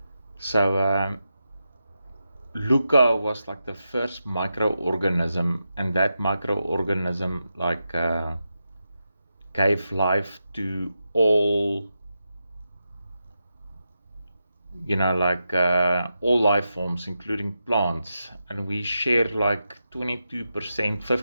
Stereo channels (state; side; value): inverted; both; correlation -0.88